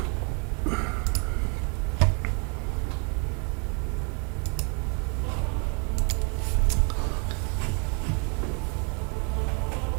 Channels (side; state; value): left; quieter; 36.5 dB